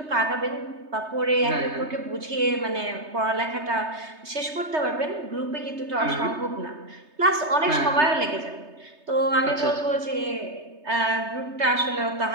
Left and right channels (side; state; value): left; late; 3.3 ms